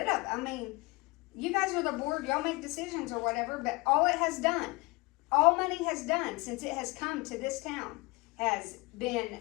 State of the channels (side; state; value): right; quieter; 24.7 dB